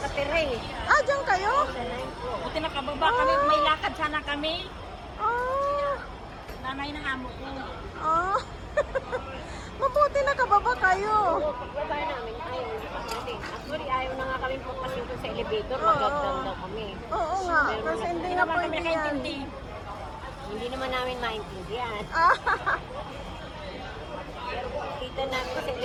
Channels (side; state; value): both; identical; correlation 1.00